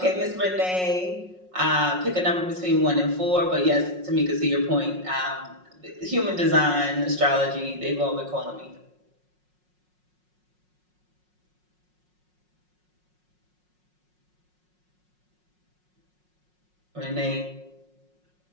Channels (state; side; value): late; left; 5.5 ms